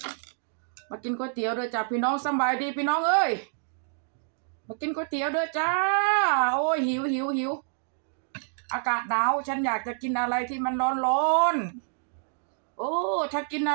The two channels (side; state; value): left; silent; digital silence